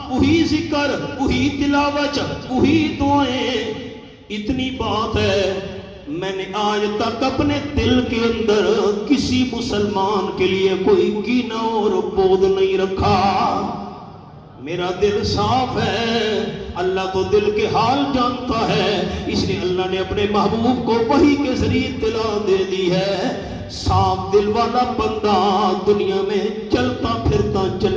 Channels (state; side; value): identical; both; correlation 1.00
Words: وہی ذکر، وہی تلاوت، وہی دعائیں۔ اتنی بات ہے میں نے آج تک اپنے دل کے اندر کسی مسلمان کے لیے کوئی کینہ اور بغض نہیں رکھا، میرا دل صاف ہے۔ اللہ تو دل کے حال جانتا ہے، اس لیے اللہ نے اپنے محبوب کو وحی کے ذریعے اطلاع دے دی ہے صاف دل والا بندہ دنیا میں چلتا پھرتا